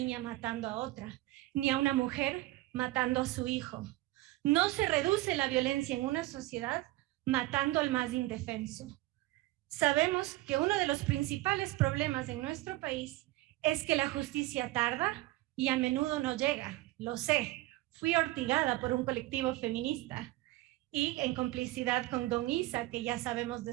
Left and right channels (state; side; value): quieter; left; 18.5 dB